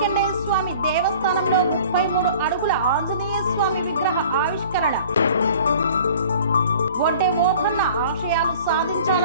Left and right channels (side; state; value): both; inverted; correlation -0.47